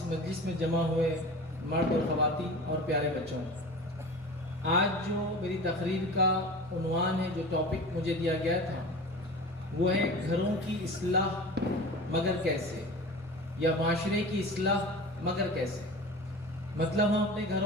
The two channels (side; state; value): both; normal; correlation 0.35